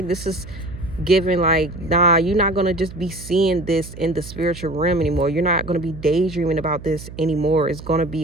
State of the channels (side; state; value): right; noise; hum, 14 dB below the sound